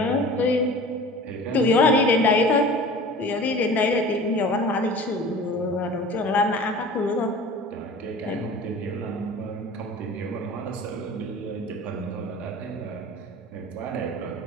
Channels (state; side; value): normal; both; correlation 0.41